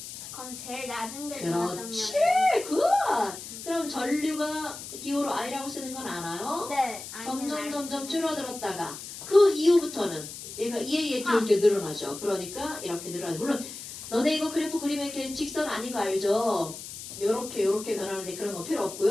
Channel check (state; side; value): noise; left; hiss, 11 dB below the sound